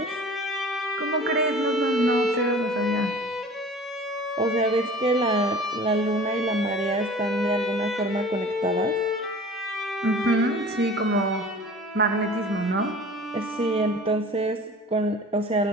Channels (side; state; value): both; normal; correlation 0.43